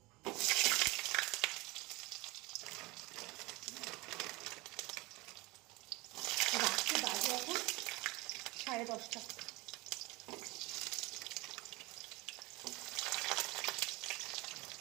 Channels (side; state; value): left; quieter; 23.3 dB